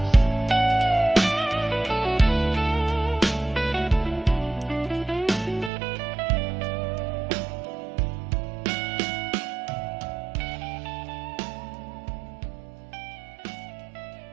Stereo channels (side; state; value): left; drops out; at 5.7 s